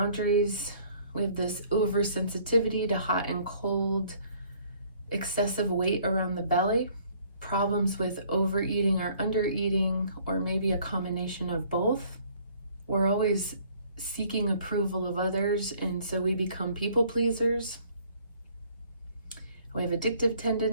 We have this oversensitivity to hot and cold, excessive weight around the belly, problems with overeating or undereating, or maybe a combination of both. We're always seeking approval of others, and so we become people pleasers. We have addictive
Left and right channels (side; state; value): both; inverted; correlation -0.59